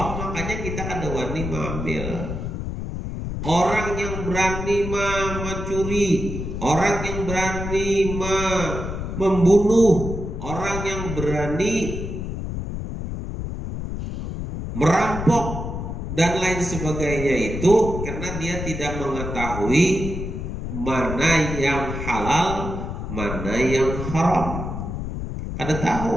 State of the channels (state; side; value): noise; left; rumble, 5 dB below the sound